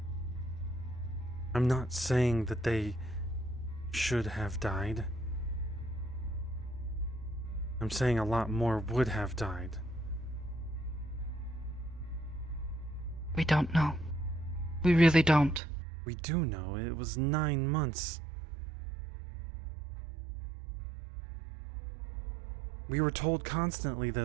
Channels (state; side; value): drops out; left; at 15.6 s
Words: I'm not saying that they should have died. I'm saying a lot more would have died. We don't know. We really don't. We do know. It was 9 months. We were told constantly that